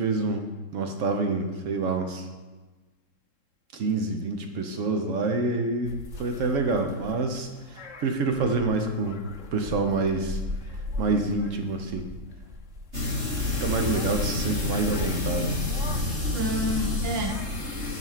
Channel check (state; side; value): late; left; 3.7 ms